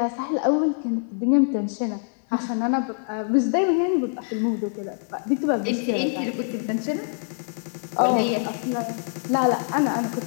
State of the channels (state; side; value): silent; right; 62 dB below the other